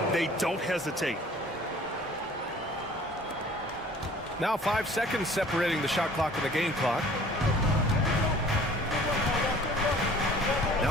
they don't hesitate. Now 5 seconds separating the shot clock and the game clock.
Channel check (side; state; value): both; normal; correlation 0.50